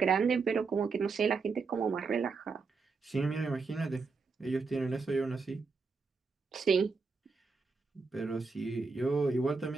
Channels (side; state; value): left; quieter; 4.6 dB